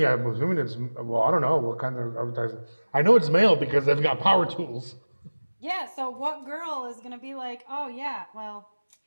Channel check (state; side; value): inverted; both; correlation -1.00